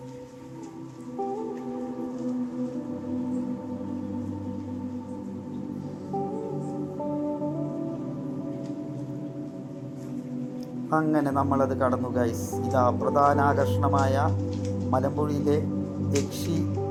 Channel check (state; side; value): identical; both; correlation 1.00